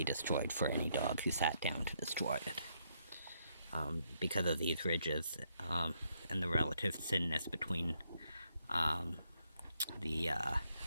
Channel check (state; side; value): inverted; both; correlation -0.75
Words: destroyed for any dog who sat down to destroy it. Because of these ridges and the relative thinness between the